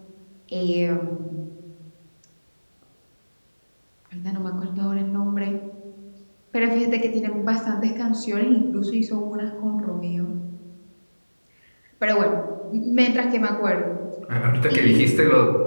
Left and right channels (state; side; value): inverted; both; correlation -1.00